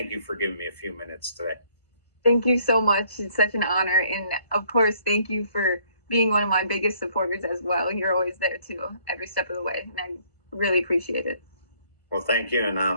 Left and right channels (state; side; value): late; right; 1.5 ms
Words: you for giving me a few minutes today. Thank you so much. It's such an honor. And of course, thank you for being one of my biggest supporters as well. You're always there too, every step of the way. And I really appreciate it. Well, thank you.